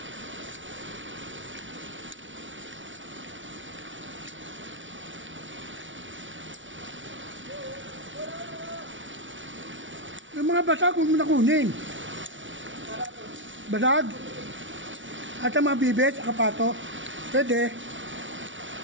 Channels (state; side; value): late; left; 0.56 ms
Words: Yung mga basag, huwag mo na kunin. Basag. At ang mga bibit, akapato. Pwede.